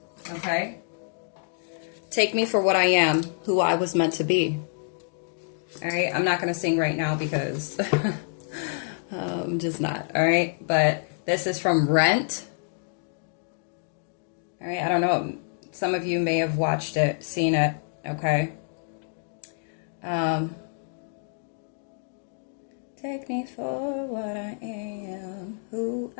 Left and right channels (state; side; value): silent; right; digital silence